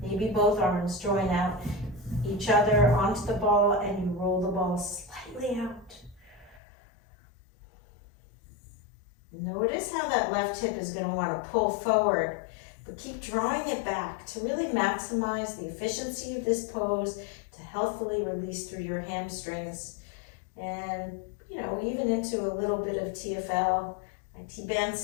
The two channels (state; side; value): drops out; right; at 6.6 s